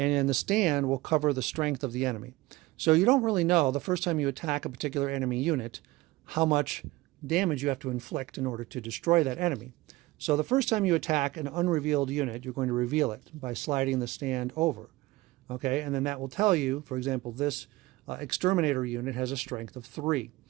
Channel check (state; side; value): quieter; left; 19.7 dB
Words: then the stand will cover the strength of the enemy. So you don't really know the first time you attack a particular enemy unit how much damage you have to inflict in order to destroy that enemy. So the first time you attack an unrevealed unit, you're going to reveal it by sliding the stand over. Okay, and then that will tell you, for example, this exterminator unit has a strength of 3.